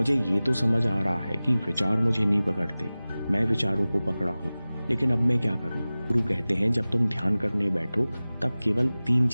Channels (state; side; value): inverted; both; correlation -0.98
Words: ये तो समझ आ रहा है कि विचार मुझे नहीं पकड़ते, मैं विचारों को पकड़ा हूँ। लेकिन अब मैं क्या करूँ? गुरु कहते हैं जब तुम ध्यान करने बैठो तब केवल 3